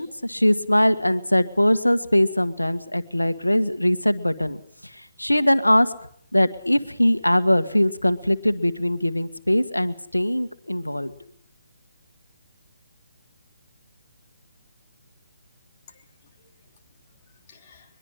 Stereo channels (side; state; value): both; inverted; correlation -0.99